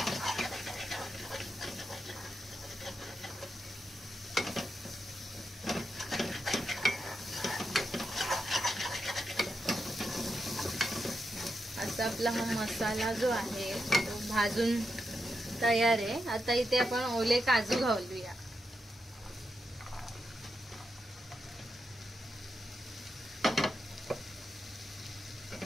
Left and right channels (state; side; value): normal; both; correlation 0.86